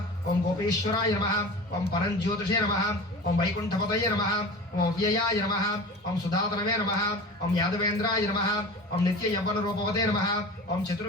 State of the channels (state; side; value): normal; both; correlation 0.35